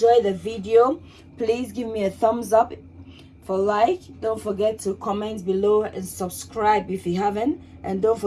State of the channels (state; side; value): identical; both; correlation 1.00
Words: the video. Please give me a thumbs up for like. Don't forget to comment below and subscribe if you haven't. And don't